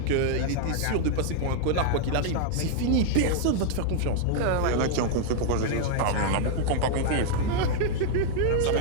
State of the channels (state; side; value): different; both; correlation 0.00